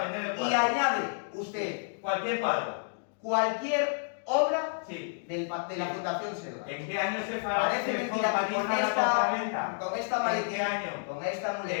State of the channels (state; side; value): silent; right; digital silence